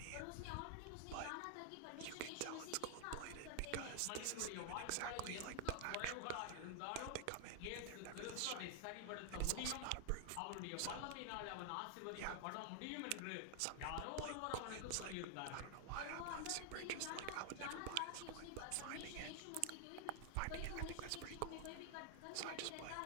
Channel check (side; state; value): both; different; correlation 0.00